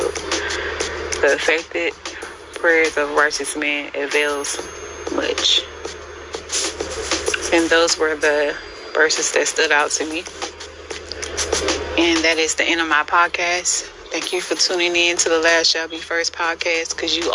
The effective prayers of righteous man avails much. And those were the verses that stood out to me. And that is the end of my podcast. Thank you for tuning in to the Last Shall Be First podcast, because you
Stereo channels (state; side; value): identical; both; correlation 1.00